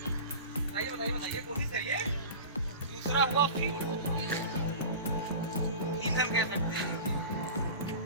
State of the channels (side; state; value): both; inverted; correlation -0.34